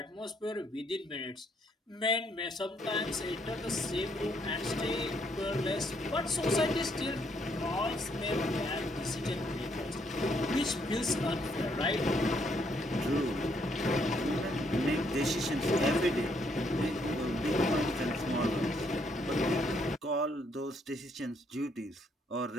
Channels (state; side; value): normal; both; correlation 0.71